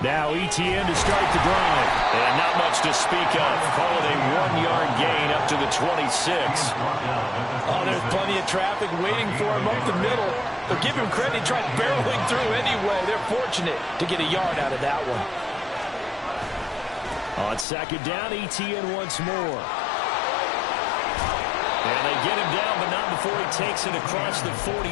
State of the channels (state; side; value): drops out; right; at 17.7 s